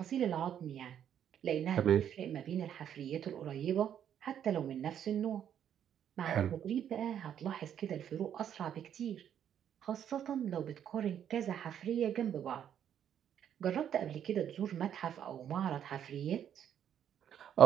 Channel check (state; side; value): quieter; left; 9.5 dB